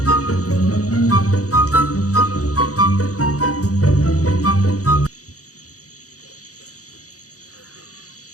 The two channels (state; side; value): late; right; 0.66 ms